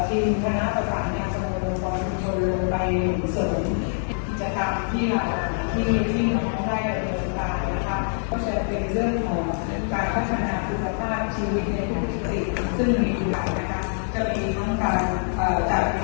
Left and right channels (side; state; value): right; silent; 59 dB below the other